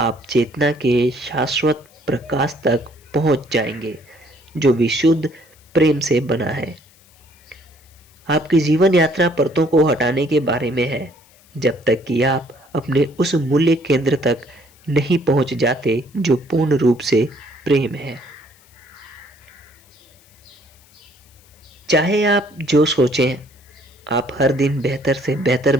चेतना के शाश्वत प्रकाश तक पहुंच जाएंगे, जो विशुद्ध प्रेम से बना है। आपकी जीवन यात्रा परतों को हटाने के बारे में है, जब तक कि आप अपने उस मूल्य केंद्र तक नहीं पहुंच जाते जो पूर्ण रूप से प्रेम है। चाहे आप जो सोचें, आप हर दिन बेहतर से बेहतर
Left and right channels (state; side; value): noise; left; hiss, 29 dB below the sound